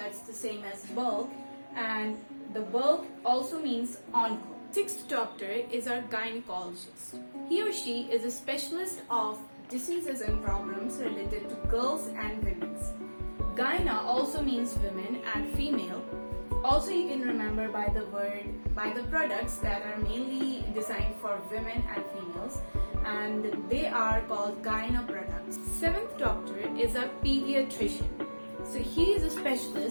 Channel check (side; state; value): both; inverted; correlation -1.00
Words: the same as bulk, and the bulk also means onco. Sixth doctor is our gynecologist. He or she is a specialist of diseases and problems related to girls and women's. Gyna also means women and female. Also you can remember by the products that are mainly designed for women and females, and they are called gyna products. Seventh doctor is a pediatrician. So he is a